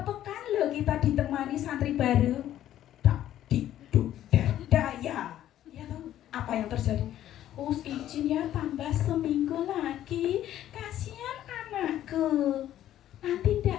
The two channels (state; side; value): quieter; right; 12.2 dB